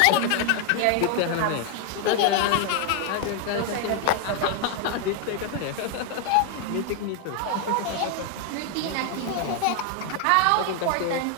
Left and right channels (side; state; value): both; different; correlation 0.00